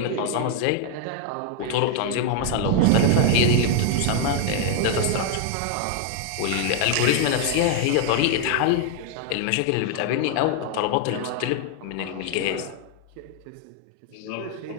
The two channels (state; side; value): different; both; correlation 0.00